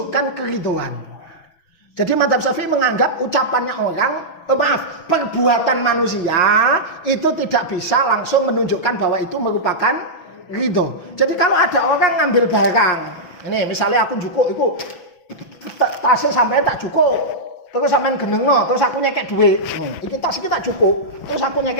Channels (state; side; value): late; right; 6.0 ms